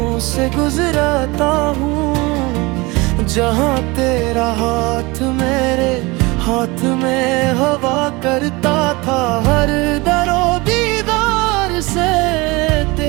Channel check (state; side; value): quieter; left; 24.0 dB